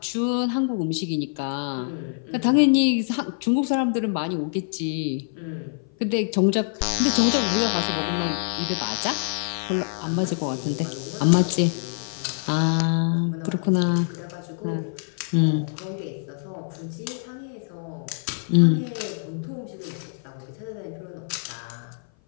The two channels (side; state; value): right; silent; 57 dB below the other